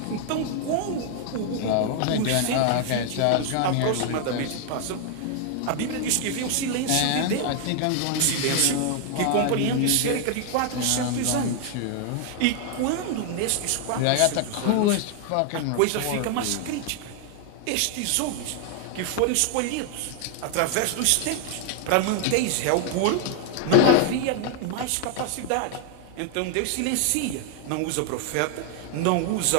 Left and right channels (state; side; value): different; both; correlation 0.00